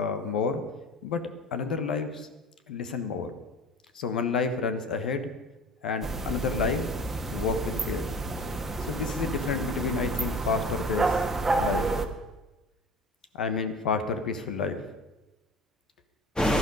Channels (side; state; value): both; normal; correlation 0.40